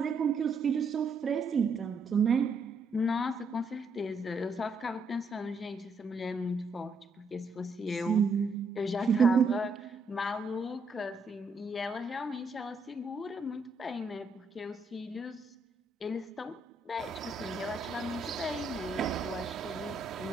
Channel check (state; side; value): quieter; left; 3.1 dB